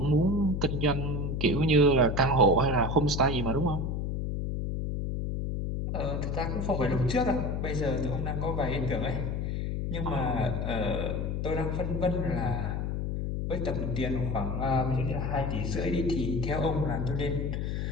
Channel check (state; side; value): noise; left; hum, 1 dB below the sound